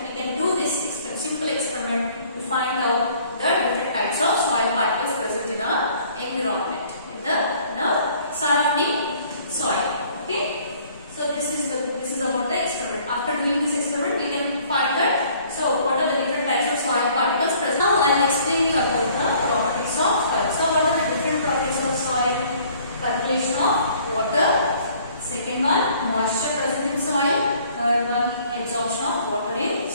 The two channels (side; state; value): both; inverted; correlation -0.57